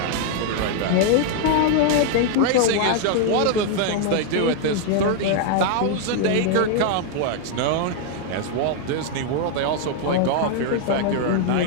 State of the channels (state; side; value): different; both; correlation 0.00